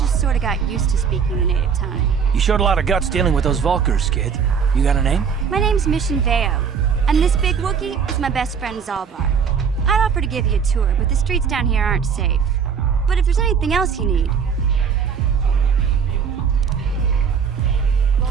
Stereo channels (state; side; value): quieter; left; 6.7 dB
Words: sort of got used to speaking the native tongue. You showed a lot of guts dealing with those Vulkars, kid. You got a name? My name's Mission Veo, and this big Wookiee is my best friend Zalbar. I'd offer to give you a tour, but the streets down here aren't safe. But if there's anything else you need...